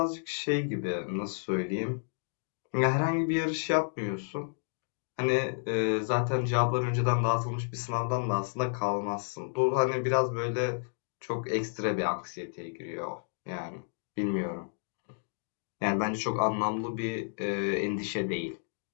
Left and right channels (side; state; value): right; silent; digital silence